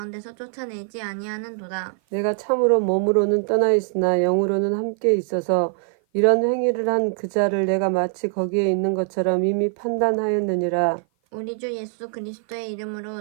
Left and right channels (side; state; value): left; silent; 55 dB below the other